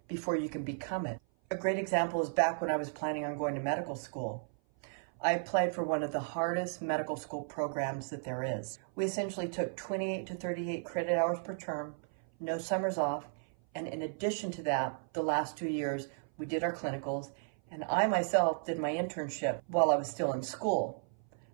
before you can become it. A great example is back when I was planning on going to medical school. I applied for one of the hardest medical school programs that there is. We essentially took 28 to 38 credit hours per term, no summers off, and in addition to that, the last 2 years, we did our clinicals, and I myself did my internship while I was still in school.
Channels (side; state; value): left; silent; 55 dB below the other